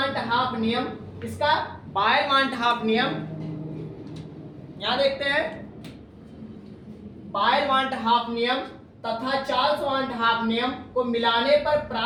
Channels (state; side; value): identical; both; correlation 1.00